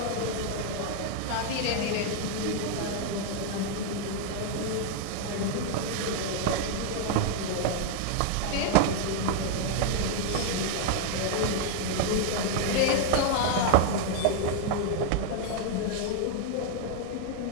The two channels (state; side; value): different; both; correlation 0.00